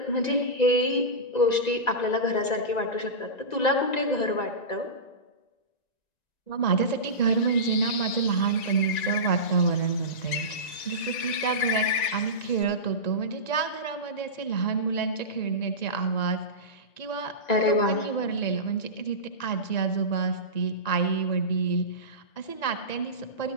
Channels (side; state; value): right; late; 1.9 ms